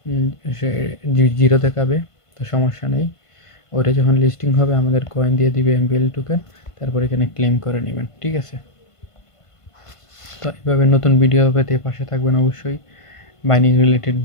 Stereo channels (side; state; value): right; late; 1.5 ms